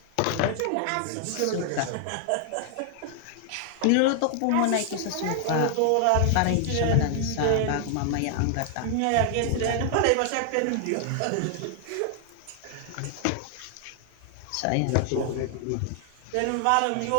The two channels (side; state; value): both; different; correlation 0.00